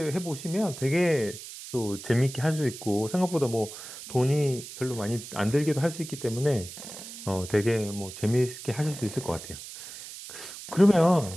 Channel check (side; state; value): right; noise; hiss, 12 dB below the sound